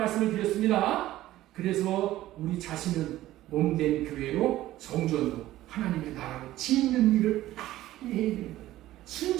드렸습니다. 그래서 우리 자신은 몸된 교회로 성전으로 하나님의 나라로 짓는 일을 빨리 해야 되는 거예요.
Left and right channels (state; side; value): quieter; left; 15.1 dB